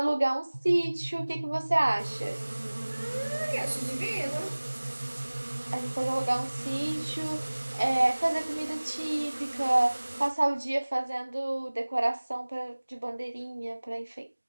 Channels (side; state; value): both; inverted; correlation -1.00